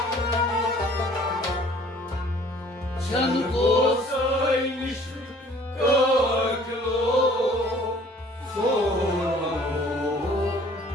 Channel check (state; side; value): normal; both; correlation 0.54